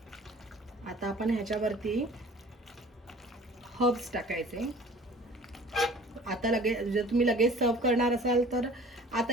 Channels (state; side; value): normal; both; correlation 0.47